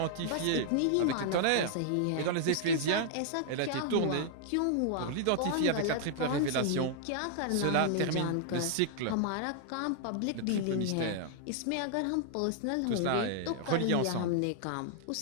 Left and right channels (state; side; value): different; both; correlation -0.01